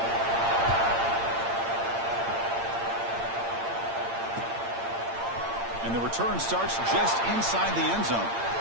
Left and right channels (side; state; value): left; late; 8.8 ms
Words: And the return starts just inside the end zone.